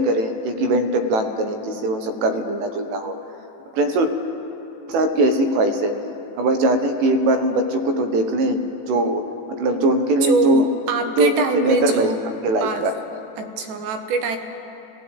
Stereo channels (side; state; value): left; late; 18 ms